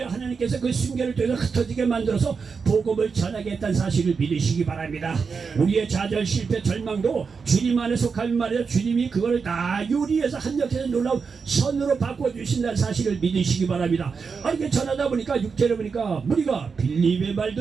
하나님께서 그 순결을 통해서 흩어지게 만들어서 복음을 전하겠다는 사실을 믿으시기 바랍니다. 우리의 좌절, 실패, 절망도 주님 안에 속하면 말이야. 주님이 그걸 다 요리해서 한역해서 놀라운 선으로 바꿔주신다는 사실을 믿으시기 바랍니다. 이렇게 전하다 보니까 6절에 보니까 우리가 빌립의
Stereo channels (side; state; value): left; quieter; 5.4 dB